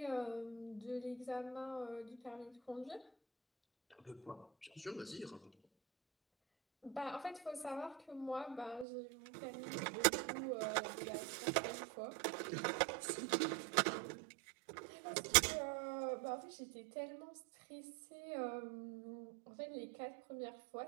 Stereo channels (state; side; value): drops out; left; at 8.8 s